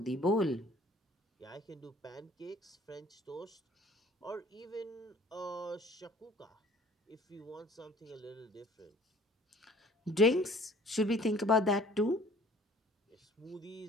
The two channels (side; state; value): both; normal; correlation 0.53